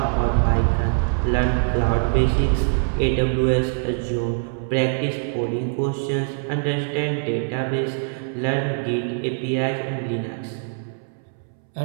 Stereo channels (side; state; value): left; silent; 63 dB below the other